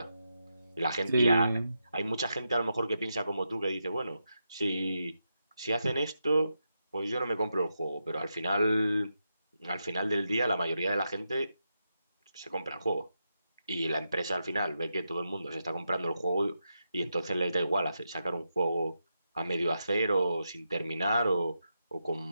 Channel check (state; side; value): inverted; both; correlation -0.86